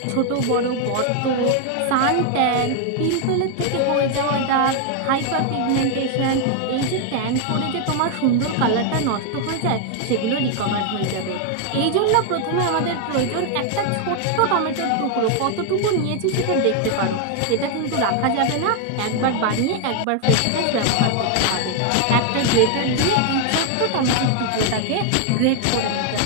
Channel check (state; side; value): different; both; correlation 0.00